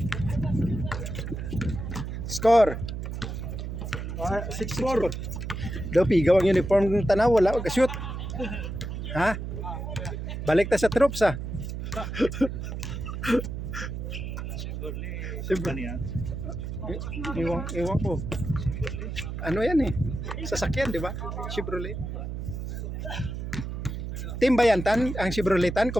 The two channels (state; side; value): noise; right; hum, 5 dB below the sound